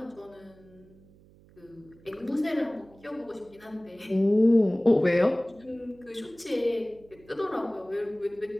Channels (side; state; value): right; noise; hum, 26 dB below the sound